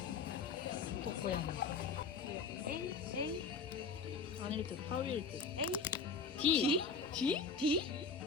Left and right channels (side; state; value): right; quieter; 5.0 dB